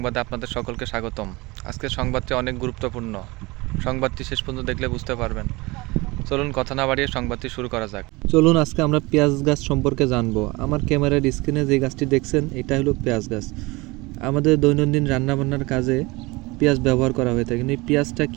আপনাদের সকলকে স্বাগতম। আজকের সংবাদটি অনেক গুরুত্বপূর্ণ। সংবাদটি শেষ পর্যন্ত দেখলে বুঝতে পারবেন। চলুন কথা না বাড়িয়ে সংবাদটি শুরু করা যাক। চলুন আজকে আমরা পেঁয়াজ গাছ সম্পর্কে জানবো। আমার ক্যামেরার স্ক্রিনে যে গাছটি দেখছেন এটা হলো পেঁয়াজ গাছ। আমাদের দৈনন্দিন রান্নাবান্নার কাজে পেঁয়াজ ব্যবহার করা হয়ে থাকে। কিন্তু এই পেঁয়াজটা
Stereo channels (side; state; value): left; quieter; 23.4 dB